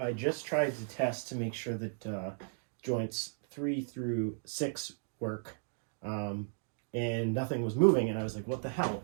just tried to test to make sure that joints 3 through 6 work, and nothing was moving, and I was like, what the hell?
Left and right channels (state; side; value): silent; left; digital silence